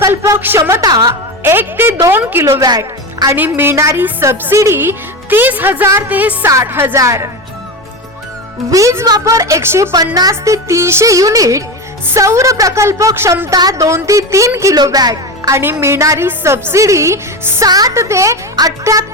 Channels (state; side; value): normal; both; correlation 0.21